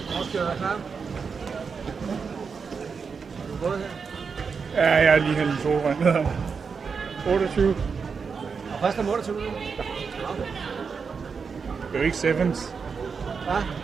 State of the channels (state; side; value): quieter; left; 5.6 dB